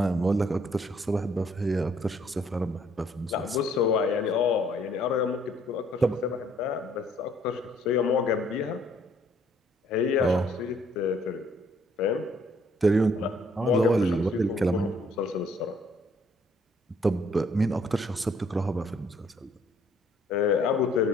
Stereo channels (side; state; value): both; normal; correlation 0.64